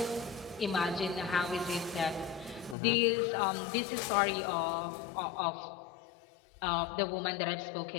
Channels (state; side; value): drops out; right; at 2.8 s